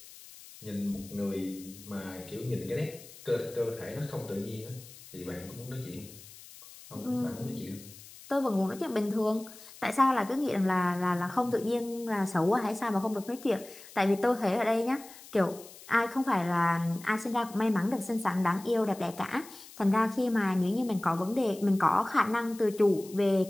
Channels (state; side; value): noise; left; hiss, 19 dB below the sound